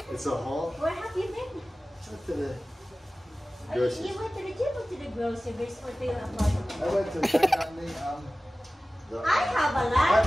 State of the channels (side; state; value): both; normal; correlation 0.97